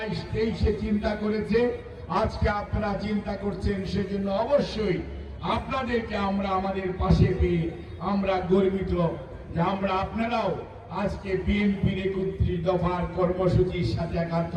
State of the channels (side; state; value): both; identical; correlation 1.00